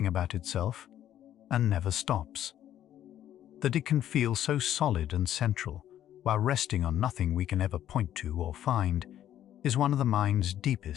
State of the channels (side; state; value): right; quieter; 11.5 dB